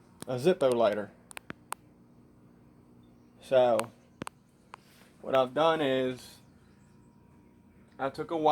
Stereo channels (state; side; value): identical; both; correlation 1.00